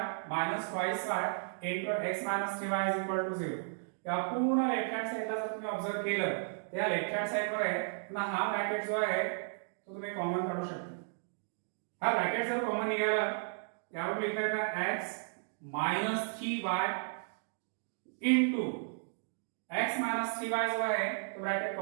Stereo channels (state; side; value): silent; left; digital silence